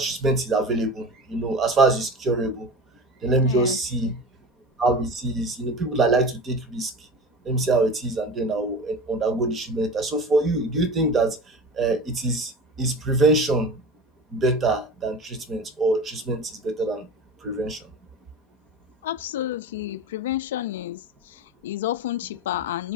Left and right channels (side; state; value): both; normal; correlation 0.33